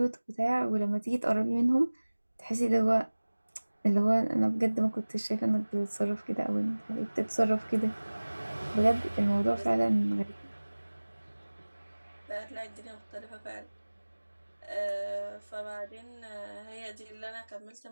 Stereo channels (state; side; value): inverted; both; correlation -1.00